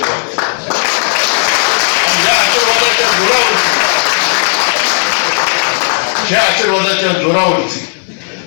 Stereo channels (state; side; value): silent; right; digital silence